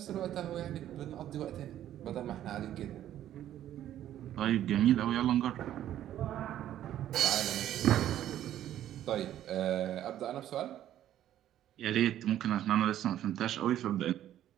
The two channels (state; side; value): quieter; left; 11.9 dB